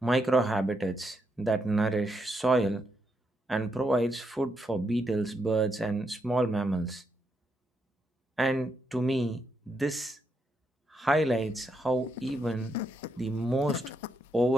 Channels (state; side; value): normal; both; correlation 0.80